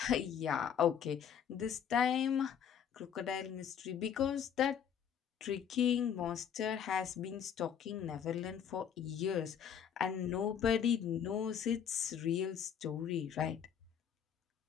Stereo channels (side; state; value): right; quieter; 8.4 dB